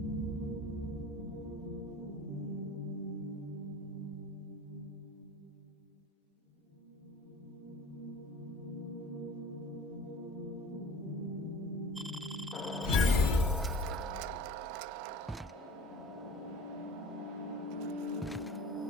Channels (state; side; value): normal; both; correlation 0.42